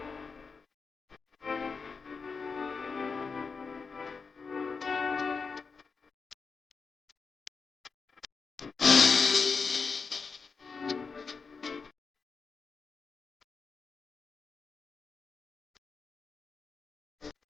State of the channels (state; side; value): quieter; right; 5.0 dB